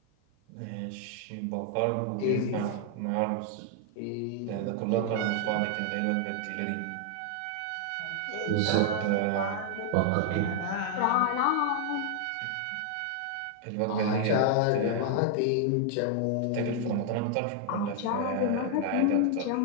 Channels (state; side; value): different; both; correlation 0.00